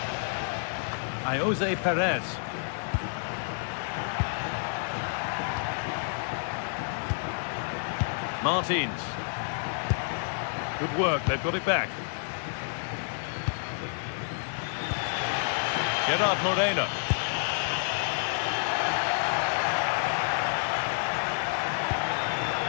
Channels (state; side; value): silent; right; digital silence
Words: Jose Perez. Martins. Good work, they've got it back. Gerard Moreno.